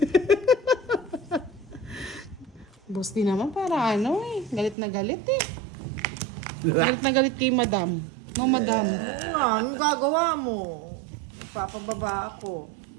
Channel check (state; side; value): drops out; left; at 4.8 s